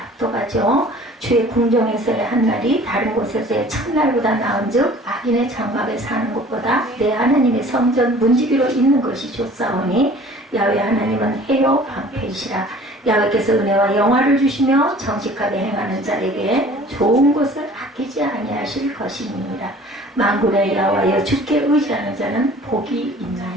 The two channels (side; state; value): both; normal; correlation 0.48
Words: 주의 궁정에서의 한 날이 다른 곳에서의 첫날보다 나은즉 악인의 장막에 사는 것보다 내 하나님의 성전 문지기로 있는 것이 좋사오니. 야훼 하나님은 해요 방패이시라. 야훼께서 은혜와 영화를 주시며 정직하게 행하는 자에게 좋은 것을 아끼지 아니하실 것이니라. 만군의 여호와여 주께 의지하는 자는 복이